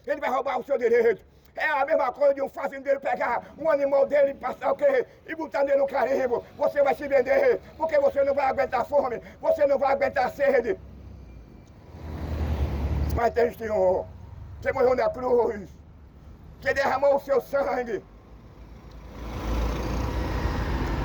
ele vai roubar o seu direito. É a mesma coisa de um fazendeiro pegar um animal dele e passar o quê? E botar nele no carimbo. Você vai se vender, porque você não vai aguentar fome, você não vai aguentar sede. Mas tem Senhor, que morreu na cruz, que derramou o seu sangue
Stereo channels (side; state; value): both; identical; correlation 1.00